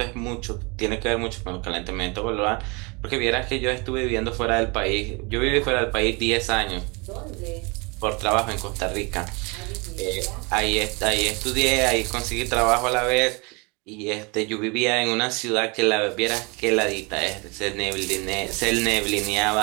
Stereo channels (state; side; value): quieter; left; 29.2 dB